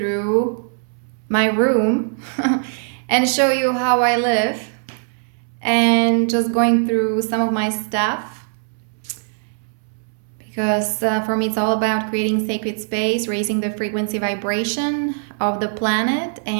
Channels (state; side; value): silent; left; 65 dB below the other